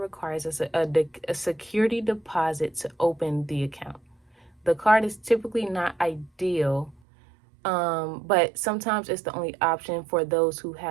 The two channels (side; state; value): left; drops out; at 7.0 s